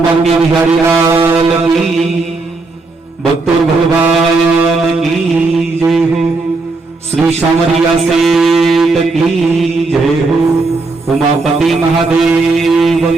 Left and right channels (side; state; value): left; quieter; 3.6 dB